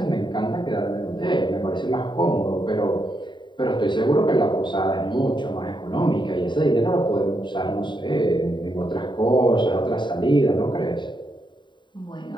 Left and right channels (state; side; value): late; right; 0.23 ms